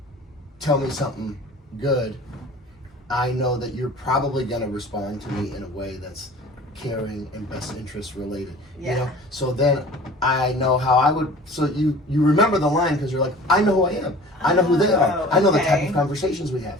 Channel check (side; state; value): both; normal; correlation 0.43